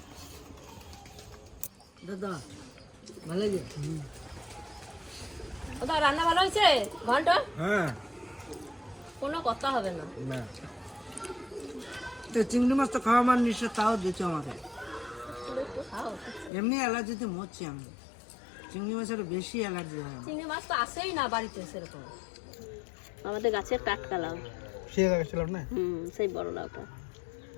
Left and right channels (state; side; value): drops out; right; at 16.5 s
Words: দাদা ভালো লাগে? ওটা রান্না ভালো হয়েছে ঘন্ট? হ্যাঁ, কোনো কথা হবে না। তো চিংড়ি মাছ তো খাওয়া মানে নিশ্চয়, তাও দিচ্ছ আমাকে। এমনি অ্যালার্জিতে মরছি আমি, চিংড়ি মাছের বেশি অ্যালার্জি হয়। চিংড়ি মাছ তো আসেই না বাড়িতে সেরকম, আমাদের গাছের টাটকা লাউ। সেই লাগাচ্ছিলাম না? সেই বড় লাউটা।